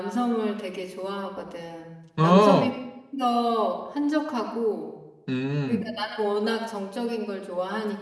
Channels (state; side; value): identical; both; correlation 1.00